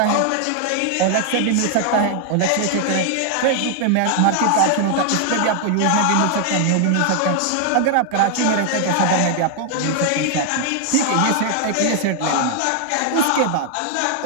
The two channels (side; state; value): both; different; correlation 0.00